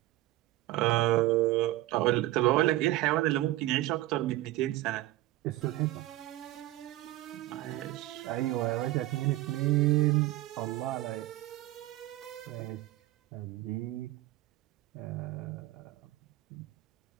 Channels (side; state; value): left; quieter; 16.5 dB